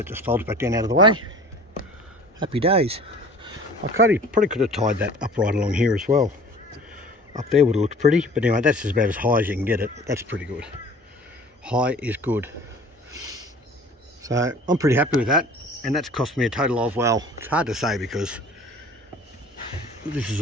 just folds back down out of the way. Happy days. I probably could have tied that up right along here as well. Up there would have looked pretty, but anyway, that's about as high as you can get it. That's pretty good. High is good. So I'm pretty happy with that, and that's cost me a total of, well, it's hard to say because this is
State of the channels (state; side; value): normal; both; correlation 0.46